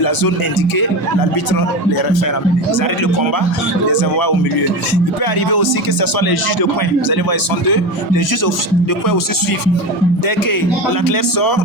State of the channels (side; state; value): both; normal; correlation 0.23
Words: la zone indiquée, l'arbitre les refait ramener. Ils arrêtent le combat, les envoient au milieu. Il peut arriver aussi que ce soit les juges de coin. Vous allez voir, ils sont 2. Les juges de coin aussi suivent. Dès que l'athlète sort,